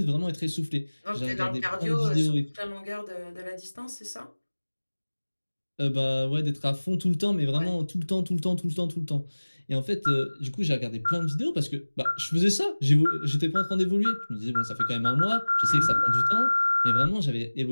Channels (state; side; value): inverted; both; correlation -1.00